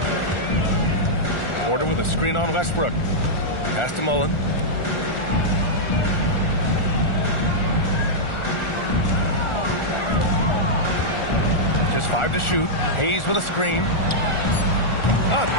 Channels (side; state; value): right; late; 1.4 ms